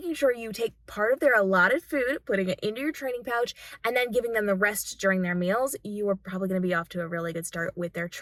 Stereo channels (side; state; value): both; identical; correlation 1.00